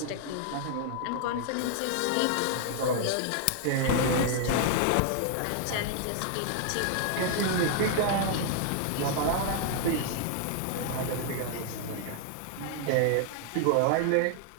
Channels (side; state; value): both; different; correlation 0.00